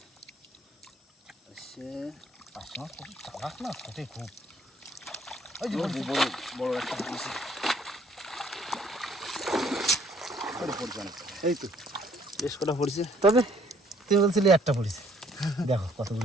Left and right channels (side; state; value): both; normal; correlation 0.62